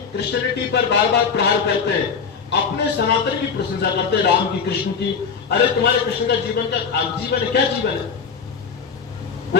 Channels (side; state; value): right; quieter; 5.9 dB